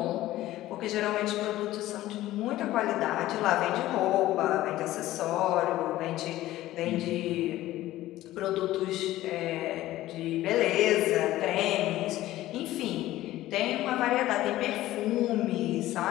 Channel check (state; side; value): quieter; right; 15.5 dB